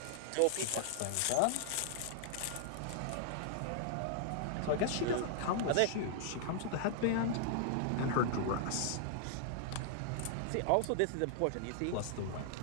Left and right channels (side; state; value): both; different; correlation -0.01